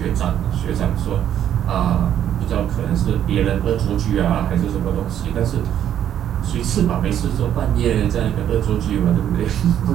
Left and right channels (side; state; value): left; quieter; 10.3 dB